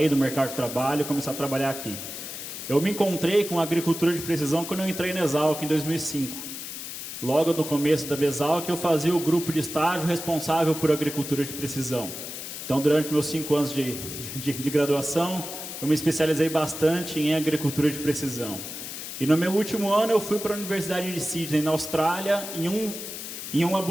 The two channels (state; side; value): noise; left; hiss, 8 dB below the sound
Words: do mercado de trabalho e começar a trabalhar aqui. Eu me encontrei com a agricultura de precisão quando eu entrei na Exalc em 2005. Logo no começo da Exalc, eu fazia o grupo de estágio responsável por agricultura de precisão. Então, durante meus 5 anos de graduação, eu me especializei bastante em agricultura de precisão. E no meu último ano, eu fui para a Universidade de Sydney, na Austrália, em um